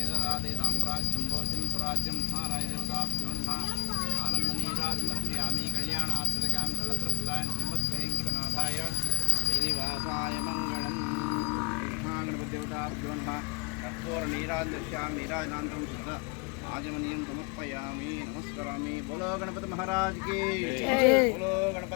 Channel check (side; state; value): right; quieter; 31.2 dB